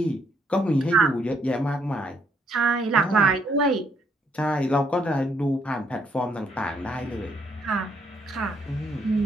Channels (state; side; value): normal; both; correlation 0.70